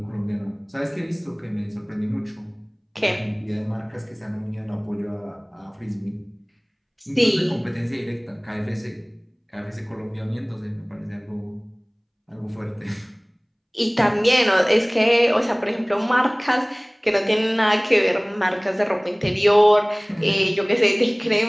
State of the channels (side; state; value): both; identical; correlation 1.00